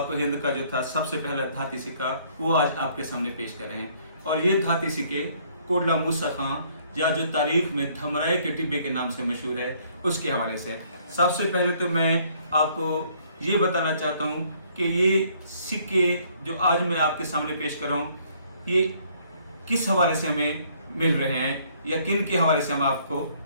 हिंद का जो था सबसे पहला धाती सिक्का, वो आज आपके सामने पेश कर रहे हैं। और ये धाती सिक्के कोटला मूसा खां, या जो तारीख में धमराए के टिब्बे के नाम से मशहूर है, उसके हवाले से। सबसे पहले तो मैं आपको ये बताना चाहता हूँ कि ये सिक्के जो आज मैं आपके सामने पेश कर रहा हूँ, ये किस हवाले से हमें मिल रहे हैं या किन के हवाले से हम आपको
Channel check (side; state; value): both; inverted; correlation -0.63